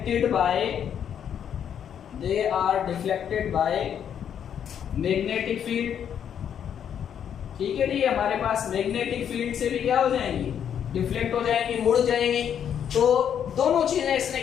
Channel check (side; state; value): right; quieter; 8.8 dB